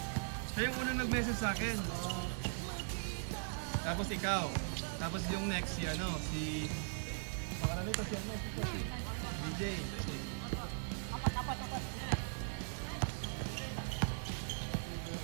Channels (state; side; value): silent; left; digital silence